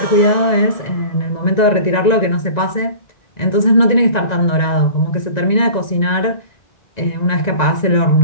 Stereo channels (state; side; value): late; right; 1.9 ms